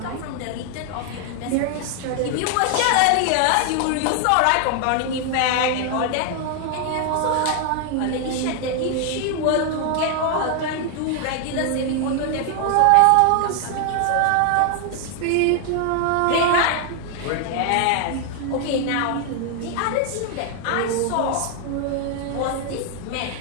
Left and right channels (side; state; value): both; different; correlation 0.00